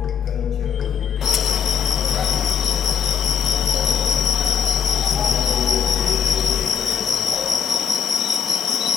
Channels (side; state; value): right; quieter; 7.7 dB